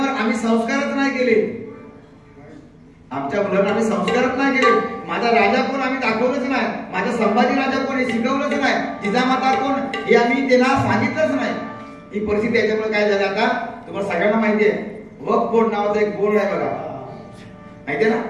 आम्ही संस्कारच नाही केले. आमच्या मुलांना आम्ही संस्कारच नाही केले. माझा राजा कोण आम्ही दाखवलंच नाही. माझा संभाजी राजा कोण हे शिकवलंच नाही. जिजामाता कोण हे आम्ही त्यांना सांगितलंच नाही. ही परिस्थिती याच्यामुळे काय झालं आता तुम्हाला सगळ्यांना माहिती आहे. वक्फ बोर्ड नावाचा एक बोर्ड आहे बघा, माहितीये ना.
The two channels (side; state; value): both; identical; correlation 1.00